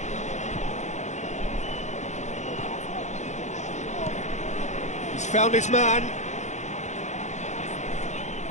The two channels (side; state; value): right; late; 0.34 ms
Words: He's found his man.